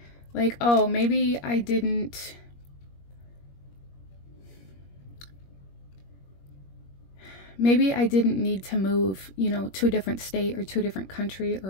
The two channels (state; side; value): late; right; 21 ms